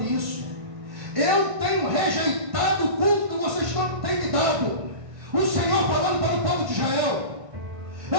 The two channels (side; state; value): left; late; 1.5 ms